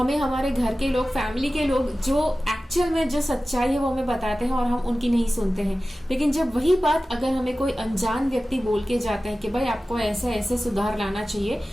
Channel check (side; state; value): both; normal; correlation 0.96